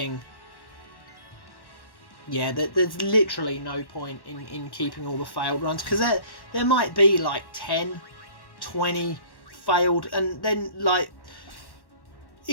yeah, there's literally no point in keeping all the failed runs, because there might be like 10, 20 failed, and then, like,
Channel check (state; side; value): late; right; 1.1 ms